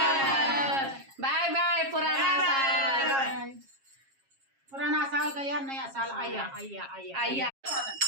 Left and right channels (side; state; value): left; late; 7.4 ms